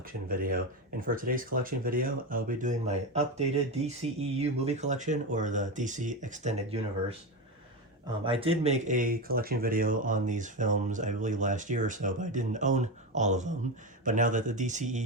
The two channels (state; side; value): normal; both; correlation 0.17